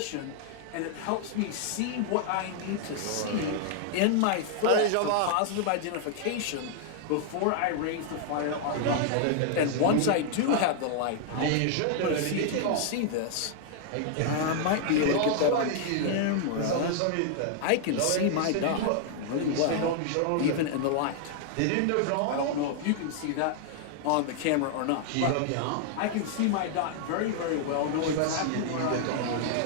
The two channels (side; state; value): both; different; correlation 0.00